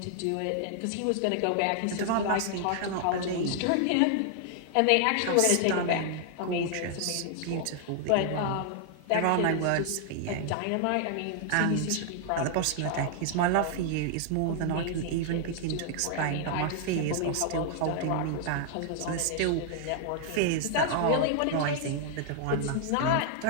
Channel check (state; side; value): different; both; correlation -0.01